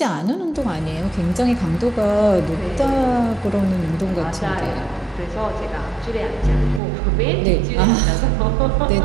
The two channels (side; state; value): left; drops out; at 6.8 s